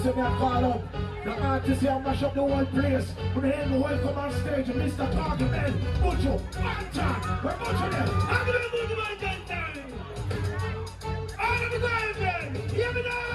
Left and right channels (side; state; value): both; identical; correlation 1.00